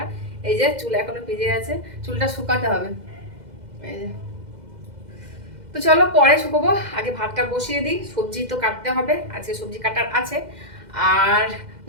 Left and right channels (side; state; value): left; late; 2.1 ms